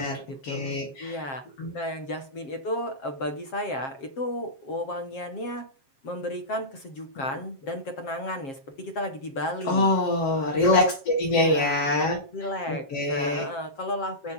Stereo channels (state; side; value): late; right; 7.5 ms